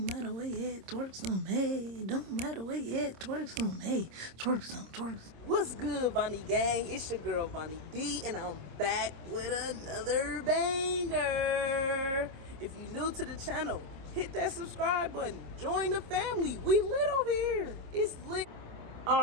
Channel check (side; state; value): left; late; 26 ms